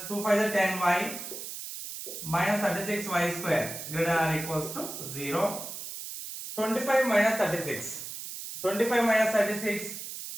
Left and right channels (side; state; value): right; noise; hiss, 9 dB below the sound